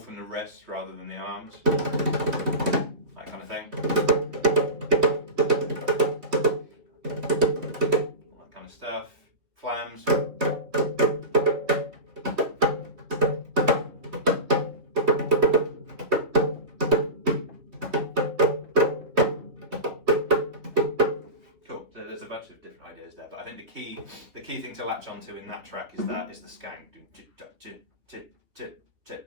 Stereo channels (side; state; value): left; late; 3.3 ms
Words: from the wrists rather than the arms, that kind of thing. All that kind of stuff. Flams. Cool. So there's a bunch of different ideas there, but I think the key thing to latch onto in that track is the skank,